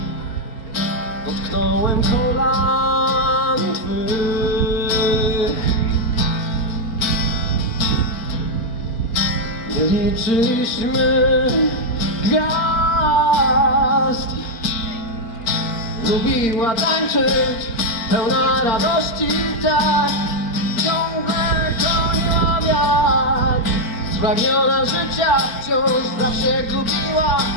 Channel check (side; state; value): right; late; 4.4 ms